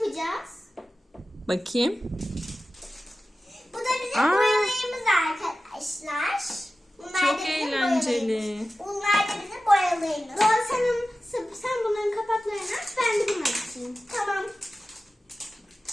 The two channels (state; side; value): normal; both; correlation 0.95